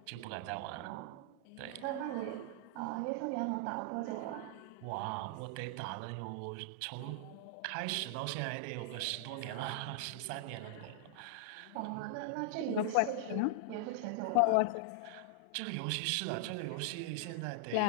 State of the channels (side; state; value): both; different; correlation -0.01